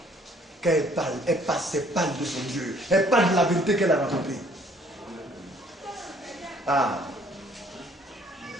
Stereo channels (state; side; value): normal; both; correlation 0.60